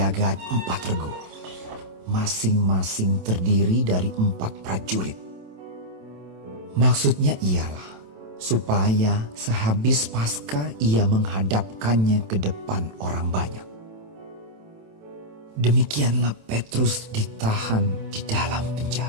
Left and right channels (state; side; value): late; left; 27 ms